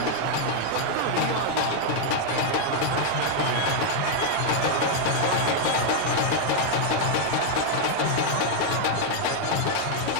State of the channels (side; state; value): both; different; correlation 0.00